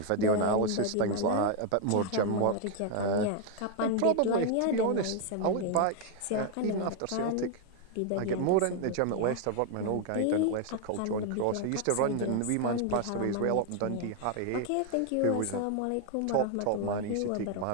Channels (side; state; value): both; different; correlation 0.00